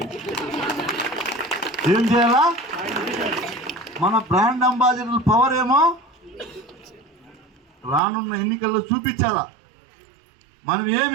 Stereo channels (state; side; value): drops out; left; at 8.0 s